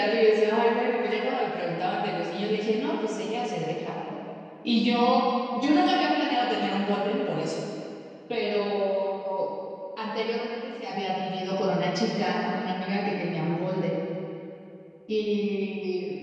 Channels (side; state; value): both; identical; correlation 1.00